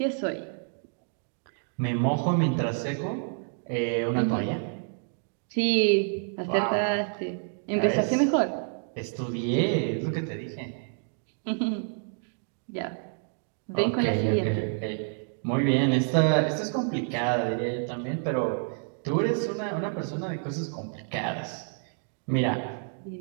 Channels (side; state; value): left; silent; 59 dB below the other